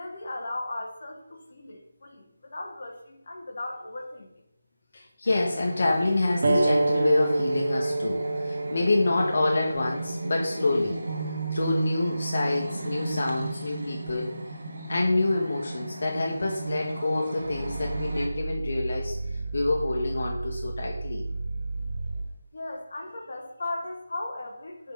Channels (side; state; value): both; inverted; correlation -0.93